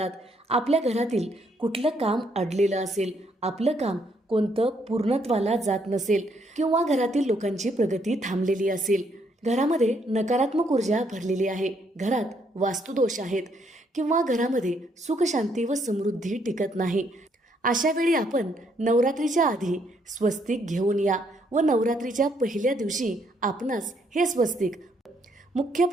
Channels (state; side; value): normal; both; correlation 0.71